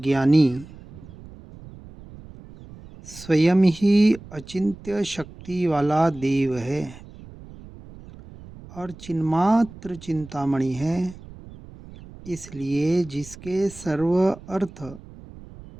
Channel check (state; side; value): noise; right; rumble, 18 dB below the sound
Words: स्वयं ही अचिंत्य शक्ति वाला देव है और चिन्मात्र चिंतामणि है। इसलिए जिसके सर्व अर्थ